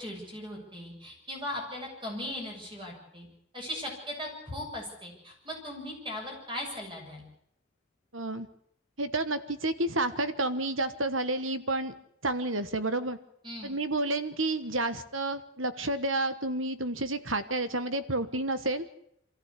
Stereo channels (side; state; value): both; normal; correlation -0.16